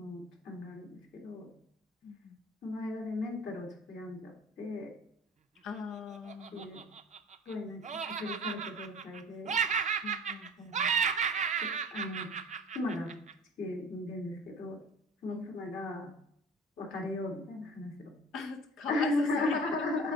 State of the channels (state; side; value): normal; both; correlation 0.41